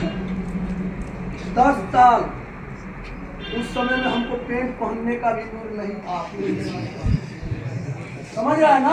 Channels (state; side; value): identical; both; correlation 1.00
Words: 10 साल। उस समय में हमको पेंट पहनने का भी दूर नहीं था। समझ रहा है